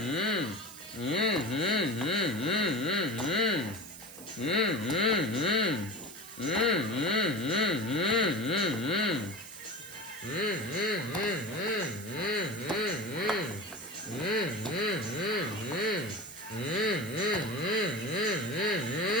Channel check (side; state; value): right; noise; hiss, 15 dB below the sound